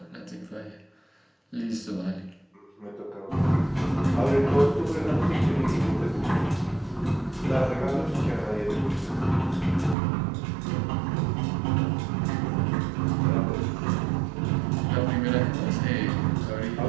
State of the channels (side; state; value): left; drops out; at 10.0 s